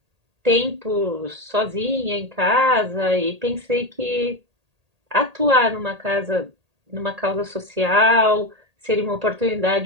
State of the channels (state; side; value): late; left; 1.8 ms